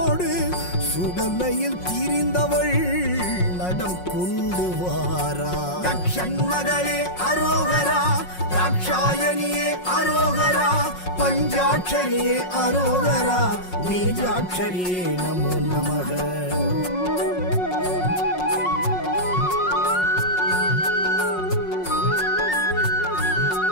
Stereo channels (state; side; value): late; right; 5.5 ms